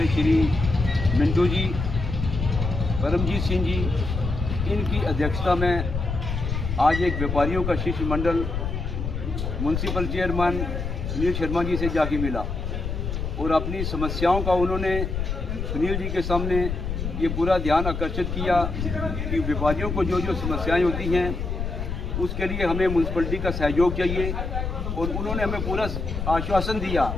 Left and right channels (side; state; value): left; noise; rumble, 4 dB below the sound